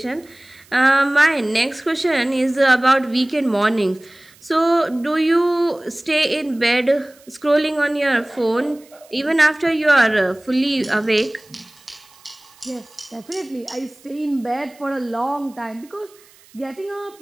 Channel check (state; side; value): noise; right; hiss, 27 dB below the sound